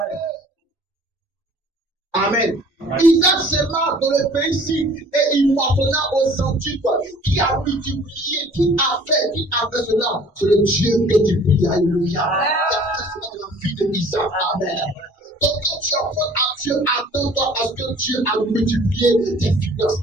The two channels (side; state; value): both; normal; correlation 0.51